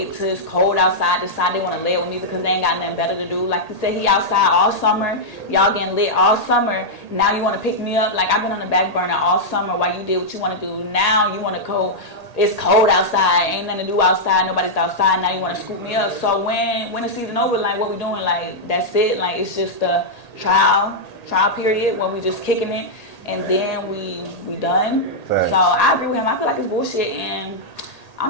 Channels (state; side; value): late; right; 1.8 ms